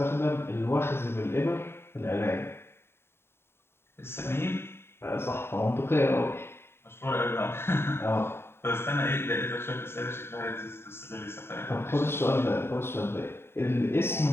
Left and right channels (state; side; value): late; right; 0.11 ms